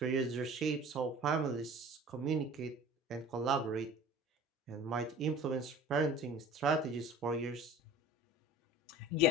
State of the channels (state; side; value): normal; both; correlation 0.42